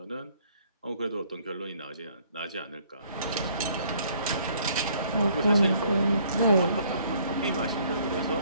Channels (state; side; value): inverted; both; correlation -0.62